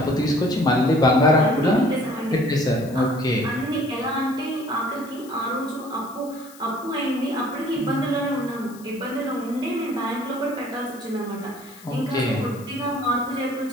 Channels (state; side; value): noise; left; hiss, 21 dB below the sound